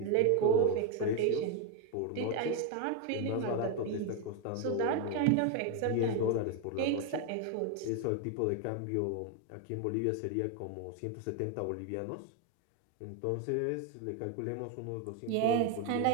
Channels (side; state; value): both; different; correlation 0.01